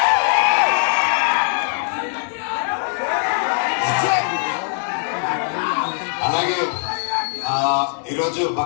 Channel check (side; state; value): right; silent; digital silence